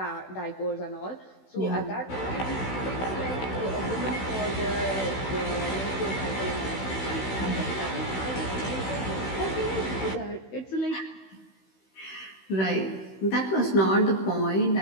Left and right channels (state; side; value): late; right; 16 ms